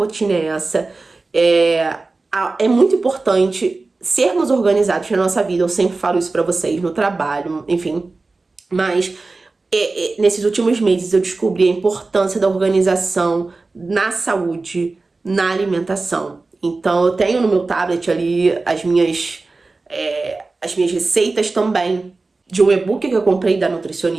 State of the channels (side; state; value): left; quieter; 3.6 dB